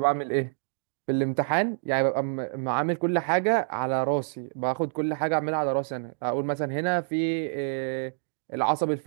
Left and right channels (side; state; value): left; silent; digital silence